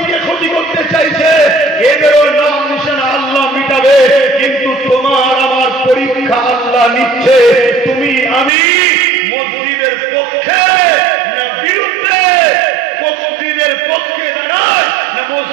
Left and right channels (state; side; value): drops out; left; at 8.5 s